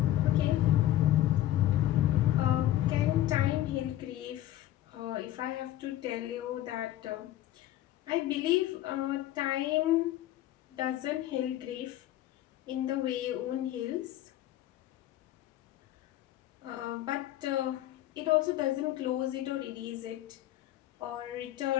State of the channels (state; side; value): quieter; right; 13.7 dB